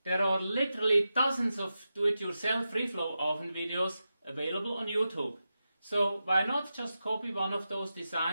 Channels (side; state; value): both; inverted; correlation -0.90